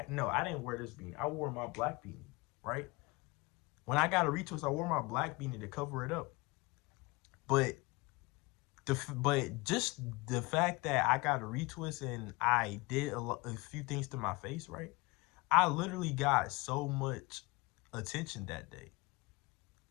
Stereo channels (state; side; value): quieter; right; 24.2 dB